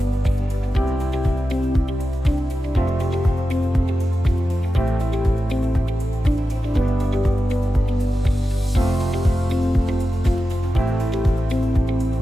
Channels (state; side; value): normal; both; correlation 0.92